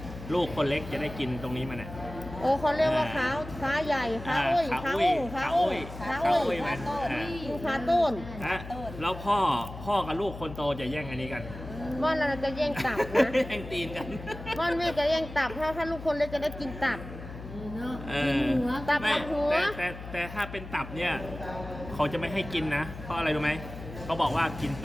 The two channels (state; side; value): noise; left; hum, 12 dB below the sound